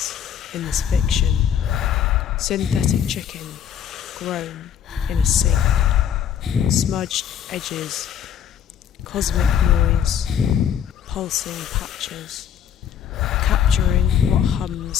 in this fiction? Synthetic chicken, grown in a sink, smudged edges, cosmic noise, pulsing patches, capturing what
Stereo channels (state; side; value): quieter; right; 8.8 dB